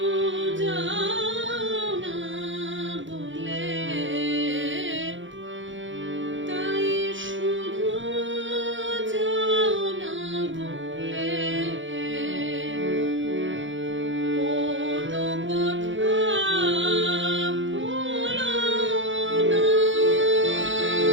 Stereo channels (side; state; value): left; late; 0.55 ms